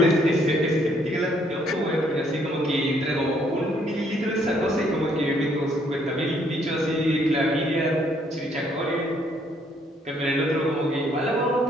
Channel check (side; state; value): both; normal; correlation 0.68